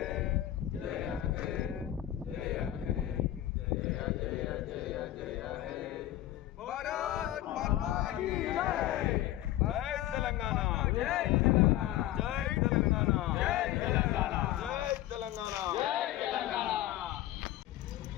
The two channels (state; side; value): quieter; right; 14.1 dB